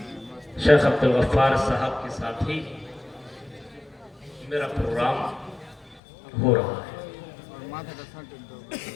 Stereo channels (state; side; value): drops out; right; at 6.0 s